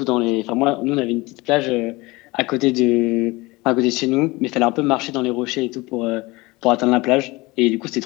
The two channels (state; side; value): quieter; right; 22.6 dB